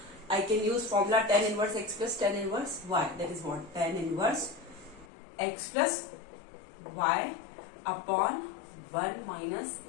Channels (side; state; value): right; drops out; at 5.1 s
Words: I can use formula tan inverse x plus tan inverse y. That is what? Tan inverse x plus y upon 1 minus